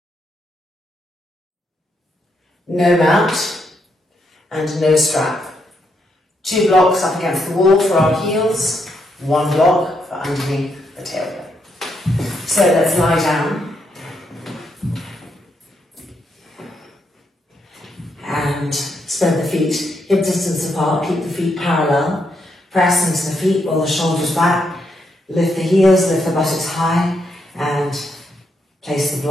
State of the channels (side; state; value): both; normal; correlation 0.78